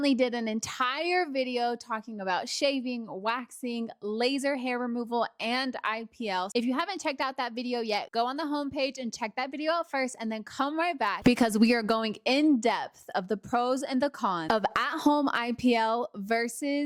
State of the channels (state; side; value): identical; both; correlation 1.00